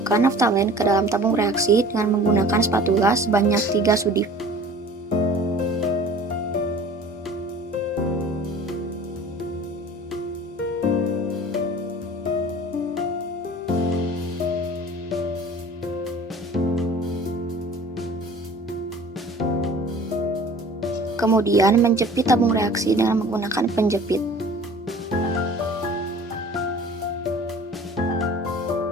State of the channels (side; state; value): both; normal; correlation 0.45